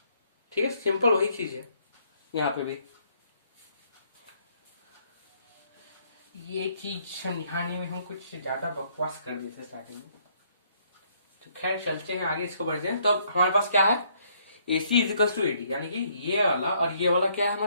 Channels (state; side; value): inverted; both; correlation -0.68